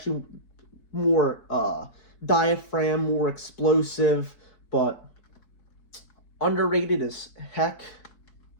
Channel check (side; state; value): right; late; 4.7 ms